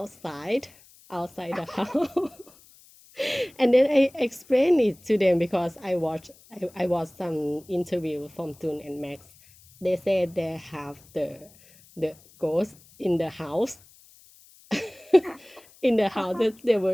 the house. And then I explained it to them, because I watched some interview from Tul and Max. They said they have the ghost in the house in the house that they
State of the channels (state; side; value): noise; left; hiss, 26 dB below the sound